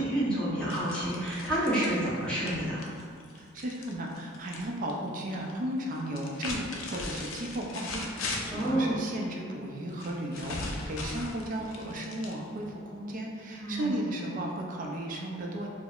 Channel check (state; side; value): normal; both; correlation 0.53